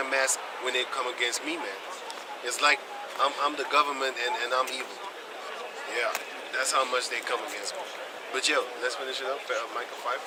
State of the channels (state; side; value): identical; both; correlation 1.00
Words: mask when they come against me, man. It's like I'm the government and I'm evil. Yeah, that's how much they come against me. But yo, let's finish it up. Micah